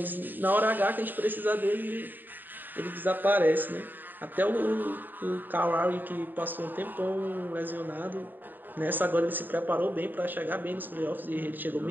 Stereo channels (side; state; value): left; late; 0.090 ms